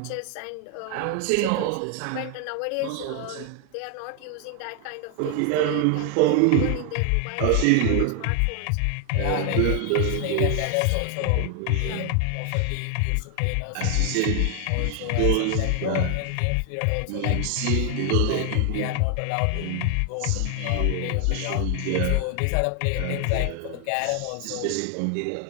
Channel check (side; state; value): both; different; correlation 0.00